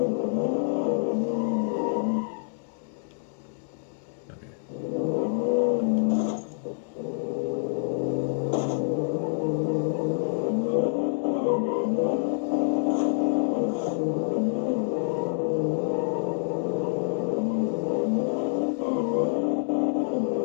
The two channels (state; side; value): silent; right; 60 dB below the other